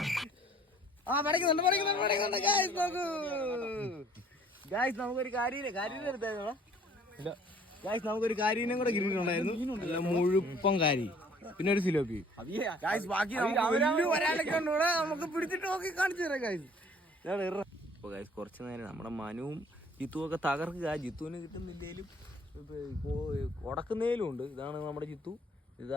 പഠിക്കുന്നുണ്ട് ഗായ്സ്. നോക്കൂ ഗായ്സ്, നമുക്കൊരു കാര്യം എടുത്തായിരുന്നോ? ഇല്ല ഗായ്സ്, നമുക്കൊരു കാരീനെ കൂടെ കിട്ടിയിട്ടുണ്ടായിരുന്നു. മുഴുപ്പം കാരി, പിന്നെ ഒരു സിലോപ്പി. ബാക്കി ഒരാളൊക്കെ ഉണ്ടൂടെ, നമുക്ക് പിടിച്ചിട്ട് നോക്കി കാണിച്ചു തരാം ഗായ്സ്. അപ്പൊ ഗായ്സ്, കുറച്ചു നേരം നമ്മുടെ മനുവും ജിത്തുവും ഒക്കെ തകർക്കുക. ജിത്തുവിന് കിട്ടുന്നില്ലേലും ഉടക്കുന്നതിലും ഉണ്ട്. ഇതാണ് നമ്മുടെ ജിത്തു.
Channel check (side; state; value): both; normal; correlation 0.56